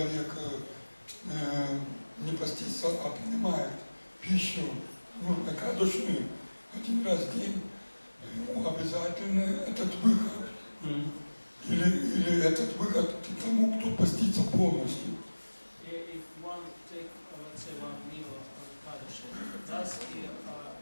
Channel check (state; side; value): inverted; both; correlation -1.00